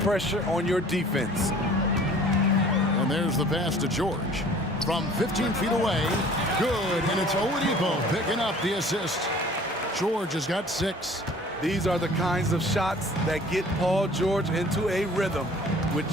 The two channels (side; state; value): both; normal; correlation 0.50